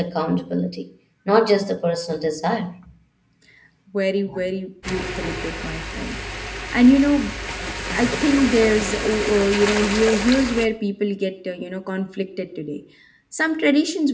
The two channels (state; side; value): identical; both; correlation 1.00